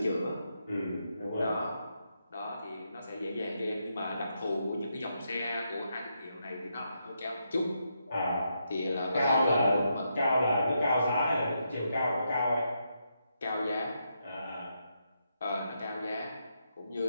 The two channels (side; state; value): both; inverted; correlation -0.81